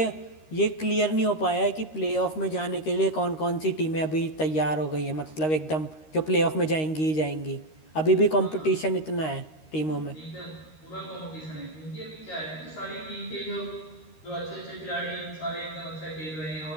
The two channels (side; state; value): right; late; 13 ms